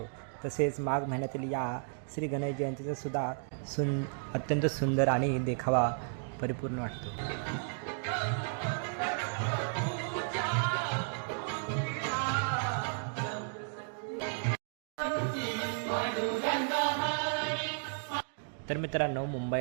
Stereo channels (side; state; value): left; silent; 55 dB below the other